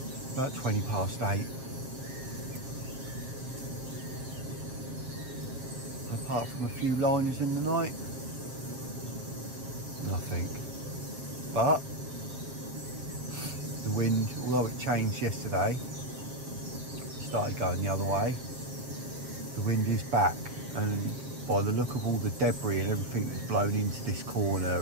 About 20 past 8. Apart from a few liners in the night, nothing. But the wind, although it changed yesterday, started going the other way, the wind is back, and by the look of all the debris and everything that's blown into this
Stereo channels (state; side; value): late; left; 7.5 ms